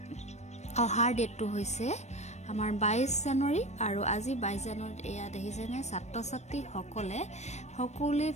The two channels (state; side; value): late; right; 0.33 ms